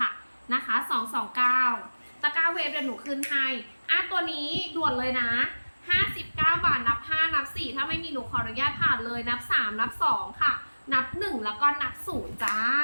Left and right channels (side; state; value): both; inverted; correlation -1.00